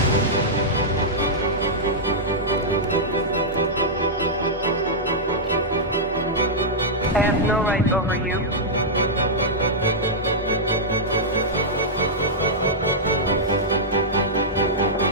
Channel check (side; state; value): both; normal; correlation -0.09